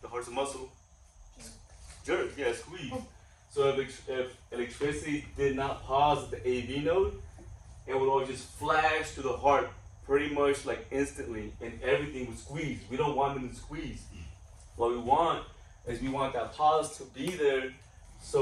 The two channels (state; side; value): identical; both; correlation 1.00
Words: The heart's a muscle. Jerk, yeah, squeeze. So if electricity did not pause at the AV node, it would all just flash to the heart pretty much like instantly, and everything would squeeze. We don't want them to squeeze. What we want is we want that pause to be there,